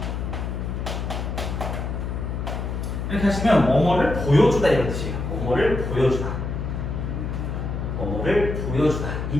이렇게 하시면 뭐뭐를 보여주다 이런 뜻이에요. 뭐뭐를 보여주다 뭐뭐를 보여주다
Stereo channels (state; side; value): noise; left; hum, 3 dB below the sound